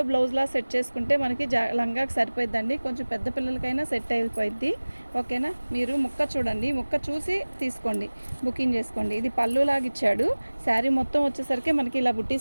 బ్లౌజ్లా సెట్ చేసుకుంటే మనకి లంగాకి సరిపోయిద్దండి. కొంచెం పెద్ద పిల్లలకైనా సెట్ అయిపోయిద్ది. ఓకేనా? మీరు ముక్క చూడండి, ముక్క చూసి తీసుకోండి, బుకింగ్ చేసుకోండి. ఇది పళ్ళులాగా ఇచ్చాడు. శారీ మొత్తం వచ్చేసరికి మనకి ఇలా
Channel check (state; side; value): inverted; both; correlation -1.00